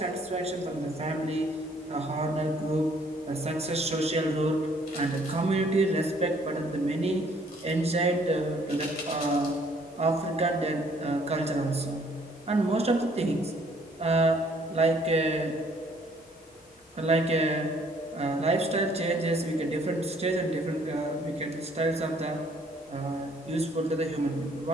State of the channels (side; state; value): both; normal; correlation 0.62